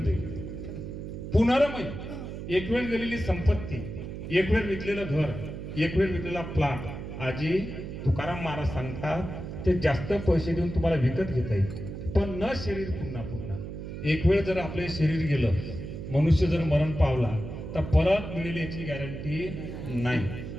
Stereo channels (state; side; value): noise; right; hum, 8 dB below the sound